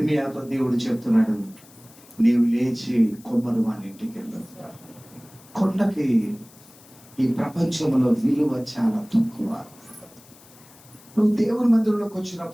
దేవుడు చెప్తున్నాడు, నీవు లేచి కొమ్మరు వాని ఇంటికి వెళ్ళు. కొండకి ఈ ప్రపంచంలో విలువ చాలా తక్కువ. నువ్వు దేవుని మందిరంలోకి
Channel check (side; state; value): left; noise; hiss, 24 dB below the sound